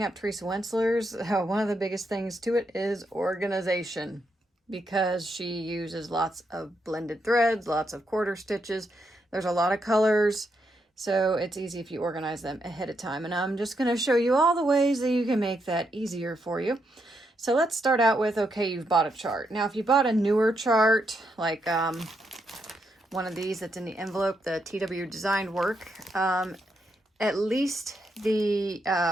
up Teresa Wentzlers, one of the biggest things to it is organization, because she uses lots of blended threads, lots of quarter stitches. There's a lot of colors. So it's easy if you organize them ahead of time. And I'm just going to show you all the ways that you can make that easier for you. So let's start out with, okay, you've bought a chart. Now, if you bought a newer chart, like one of these that's in the envelope, the TW Designed Work, at least the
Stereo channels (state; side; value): normal; both; correlation 0.80